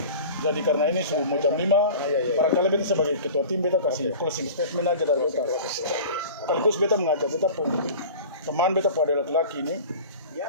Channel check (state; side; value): inverted; both; correlation -0.38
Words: Jadi karena ini sudah mau jam 5, barangkali beta sebagai ketua tim beta kasih closing statement aja dari beta. Sekaligus beta mengajak beta teman beta pada laki-laki ini.